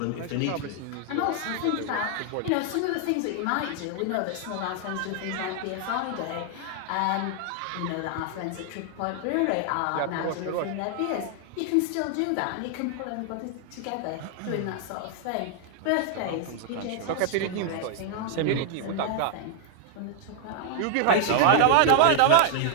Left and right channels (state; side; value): different; both; correlation 0.00